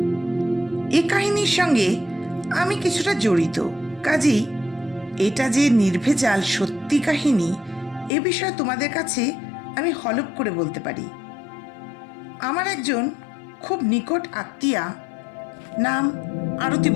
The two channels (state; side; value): drops out; right; at 8.1 s